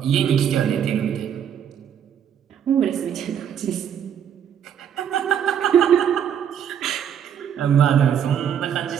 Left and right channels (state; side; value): quieter; left; 8.8 dB